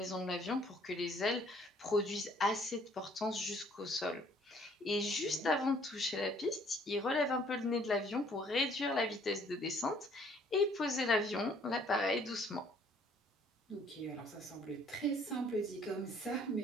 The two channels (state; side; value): normal; both; correlation 0.60